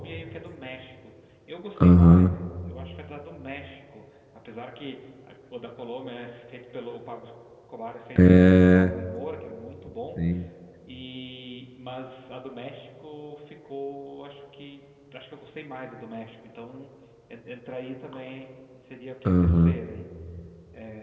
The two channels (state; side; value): identical; both; correlation 1.00